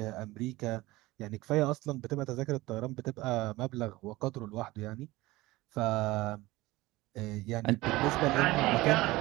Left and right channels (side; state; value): left; quieter; 19.5 dB